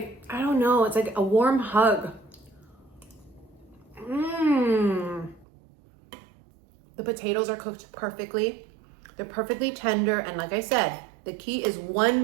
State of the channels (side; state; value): left; drops out; at 5.5 s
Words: I don't know, it's like a warm hug. The potatoes are cooked perfectly. They're perfectly tender, and like I said, the key is